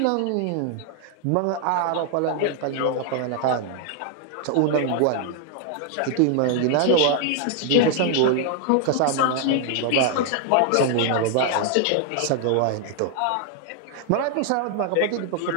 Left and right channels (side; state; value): both; different; correlation 0.00